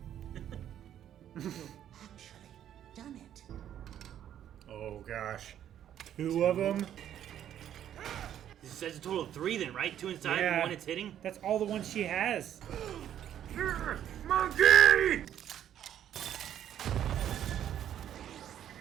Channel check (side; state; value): left; quieter; 10.5 dB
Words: Actually, done it. Oh gosh. 2 of them. This says a total of 3 then, right? 2 inside and Yeah. 1 it's hitting? That's all the ones she has. Monkey!